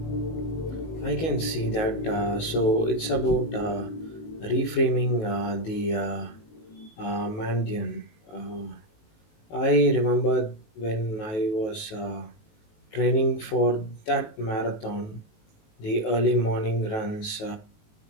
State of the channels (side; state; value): right; late; 19 ms